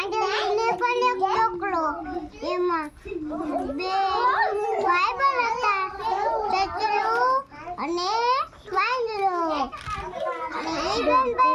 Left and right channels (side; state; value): both; identical; correlation 1.00